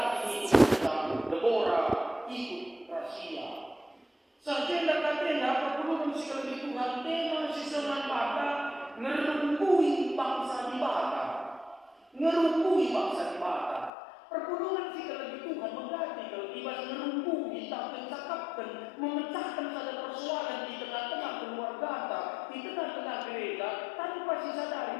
itu Deborah ikut rahasia. Sarjana katena perpuluhan sekali Tuhan tema sisaman bata ngerungkui bangsa di bata, ngerungkui bangsa di bata. Perpuluhan sekali Tuhan mengganti kalau ibas ngerungkui tak mencakapkan, memecahkan saja persoalan di tengah-tengah keluarga, di tengah-tengah gereja, tanpa sadari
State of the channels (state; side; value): drops out; right; at 13.9 s